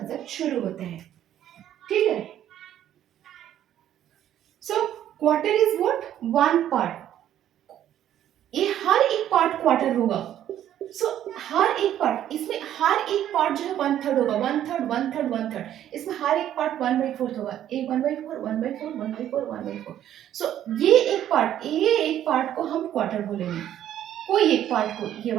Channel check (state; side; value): quieter; left; 11.3 dB